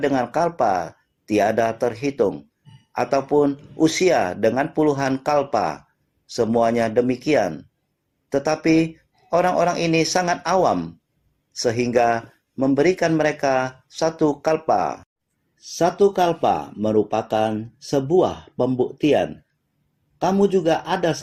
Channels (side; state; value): both; identical; correlation 1.00